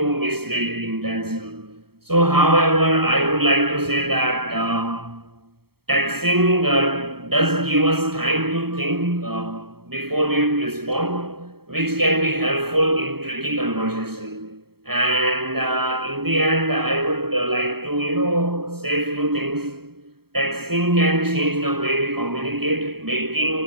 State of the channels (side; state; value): left; late; 0.95 ms